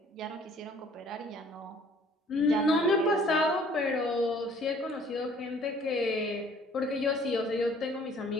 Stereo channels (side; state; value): both; normal; correlation 0.56